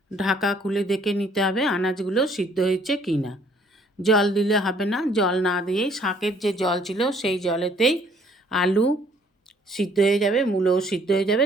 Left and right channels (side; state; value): both; normal; correlation 0.61